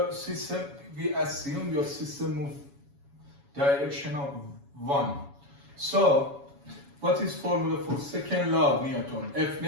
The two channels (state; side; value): late; left; 7.1 ms